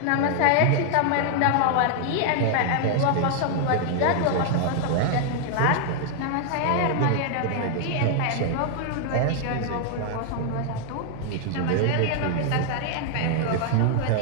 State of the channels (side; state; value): both; different; correlation 0.00